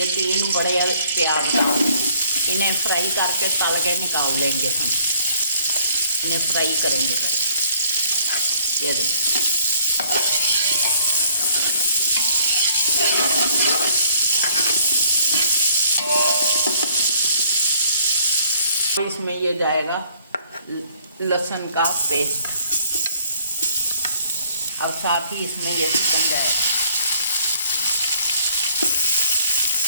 3 बड़े प्याज इन्हें फ्राई करके तल के निकाल लेंगे। हम इन्हें फ्राई करेंगे पहले। ये देखिए, इसमें ये जाएगा लहसुन का पेस्ट, और साथ ही इसमें ये चिकन जाएगा।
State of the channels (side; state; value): both; inverted; correlation -0.59